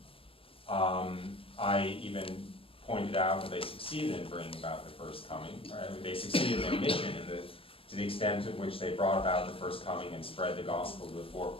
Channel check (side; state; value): right; late; 0.27 ms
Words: I even pointed out that they succeeded in bringing about the first coming. Right? They succeeded in their mission to the extent to which they brought about the first coming and spread the gospel to the four